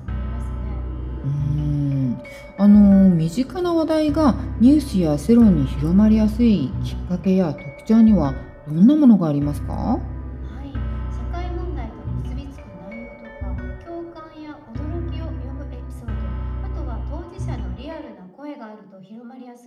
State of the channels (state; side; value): identical; both; correlation 1.00